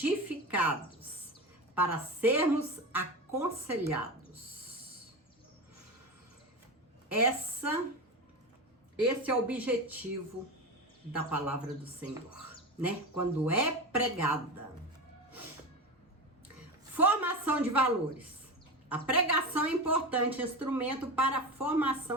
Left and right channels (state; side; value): normal; both; correlation 0.23